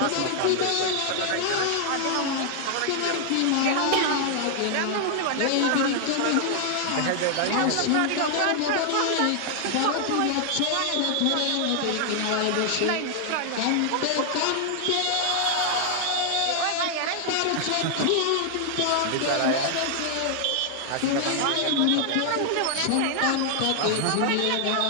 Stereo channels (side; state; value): both; different; correlation 0.00